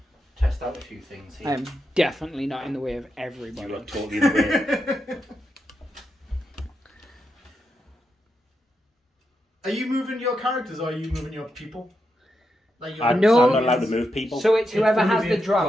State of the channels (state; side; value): normal; both; correlation 0.85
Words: test out a few things here. I'm definitely not in the way of You everybody. are totally in the way. Are you moving your characters or are you moving your people? Like your I'm No. not allowed to move people. So it's whoever It's has only the a drop